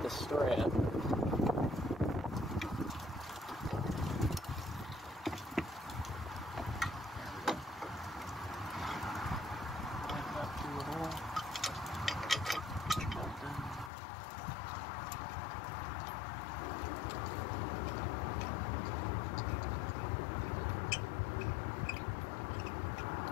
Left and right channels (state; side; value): drops out; right; at 13.9 s